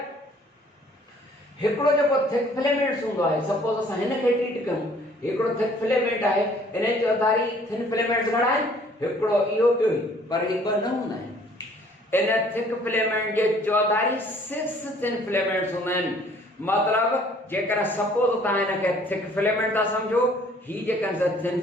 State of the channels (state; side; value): normal; both; correlation 0.57